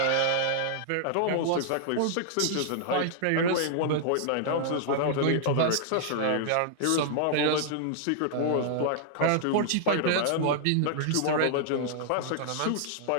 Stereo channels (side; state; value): both; different; correlation -0.01